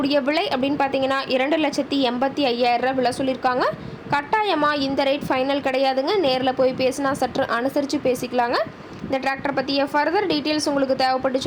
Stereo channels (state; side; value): identical; both; correlation 1.00